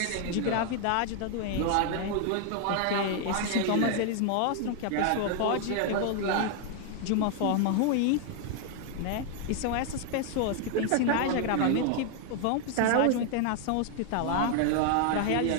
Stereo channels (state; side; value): different; both; correlation 0.00